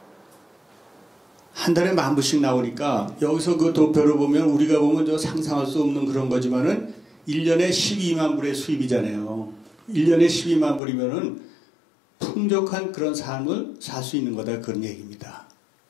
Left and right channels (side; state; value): right; drops out; at 10.8 s